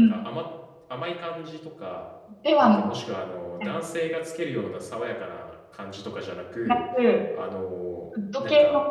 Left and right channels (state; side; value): identical; both; correlation 1.00